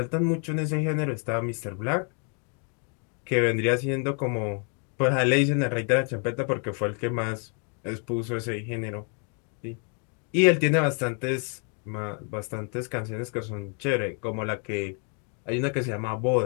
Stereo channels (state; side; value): quieter; right; 39.7 dB